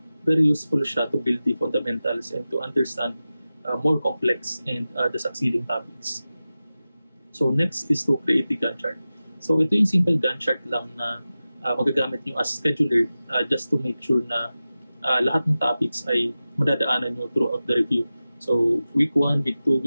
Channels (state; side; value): inverted; both; correlation -0.95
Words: very useful siya to build the fundamentals and to understand more complex and the succeeding topics. So next is to create the Gantt chart. So ito yung simple Gantt chart lang na magagamit nyo as scheduler just to make sure na lahat ng topics ay madadaanan nyo throughout the review. So week 1, week 2,